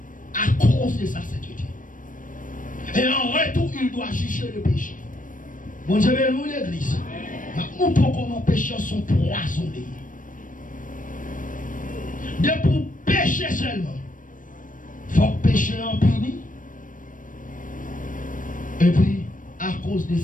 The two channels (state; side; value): late; right; 0.38 ms